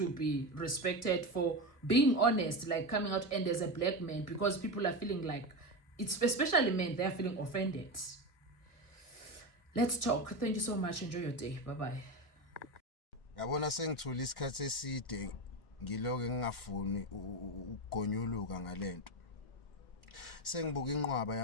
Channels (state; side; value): late; right; 1.6 ms